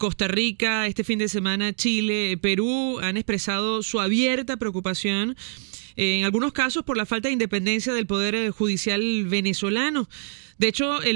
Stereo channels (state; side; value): silent; left; digital silence